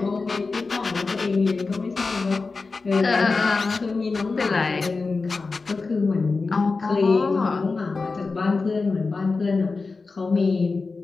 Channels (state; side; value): quieter; right; 4.1 dB